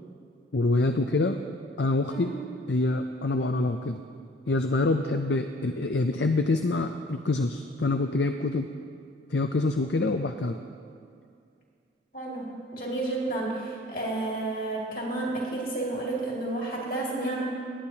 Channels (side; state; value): both; normal; correlation 0.52